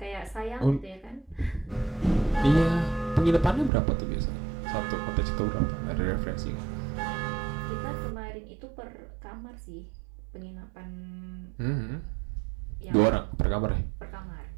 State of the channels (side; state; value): left; drops out; at 3.7 s